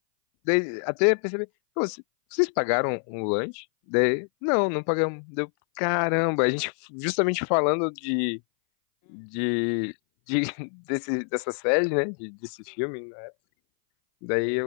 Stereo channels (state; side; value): silent; right; 58 dB below the other